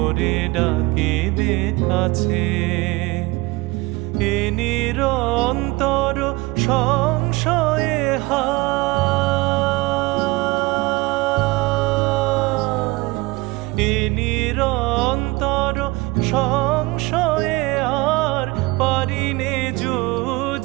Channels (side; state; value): left; quieter; 22.4 dB